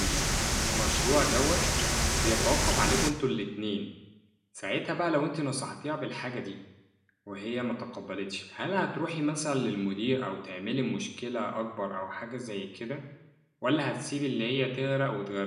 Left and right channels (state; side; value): identical; both; correlation 1.00